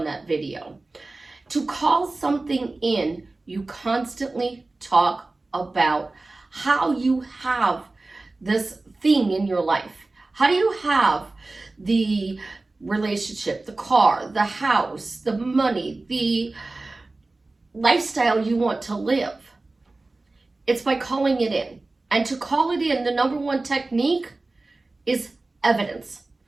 that video. To call something in, you constantly talk about how you have this thing in your life. How do you have the relationship, the car, the house, the money, the lifestyle you want to live? It's by calling it in. And to call it in, the number one technique is evidence.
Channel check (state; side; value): quieter; left; 3.2 dB